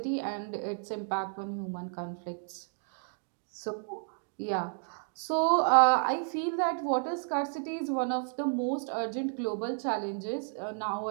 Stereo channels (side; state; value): left; silent; digital silence